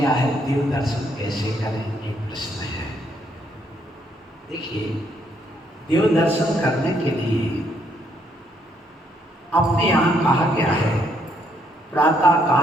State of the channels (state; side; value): normal; both; correlation 0.71